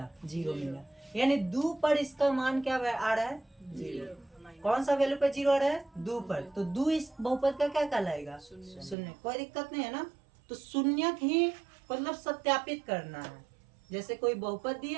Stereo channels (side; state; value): left; drops out; at 9.0 s